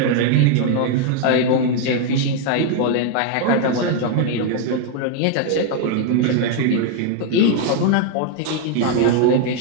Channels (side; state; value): both; different; correlation 0.00